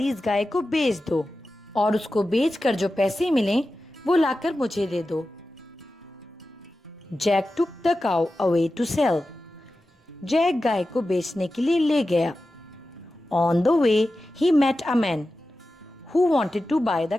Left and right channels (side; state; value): both; normal; correlation 0.93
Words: इस गाय को बेच दो और उसको बेचकर जो पैसे मिलें वो लाकर मुझे दे दो. Jack took the cow away to sell. Jack गाय को बेचने के लिए ले गया. On the way, he met a man who wanted to buy the